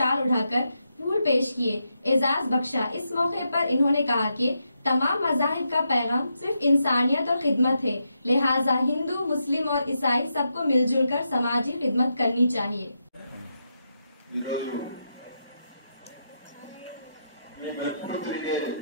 उठाकर फूल पेश किए, एजाज बख्शा। इस मौके पर इन्होंने कहा कि तमाम मज़ाहिब का पैगाम सिर्फ इंसानियत और खिदमत है, लिहाजा हिंदू, मुस्लिम और ईसाई सबको मिलजुल कर समाजी खिदमत करनी चाहिए।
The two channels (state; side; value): inverted; both; correlation -0.84